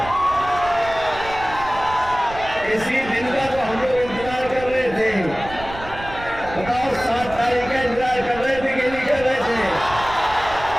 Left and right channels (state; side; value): noise; right; rumble, 14 dB below the sound